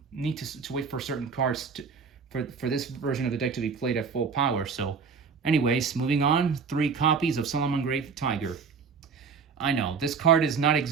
need to wait for certain cards for this version of the deck to be played at full power. So anyways, moving on, 3 copies of Salamangreat Tiger. I know this card is not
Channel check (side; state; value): left; quieter; 5.6 dB